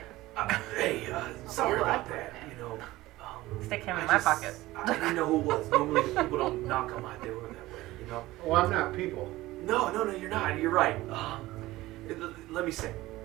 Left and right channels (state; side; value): quieter; left; 17.8 dB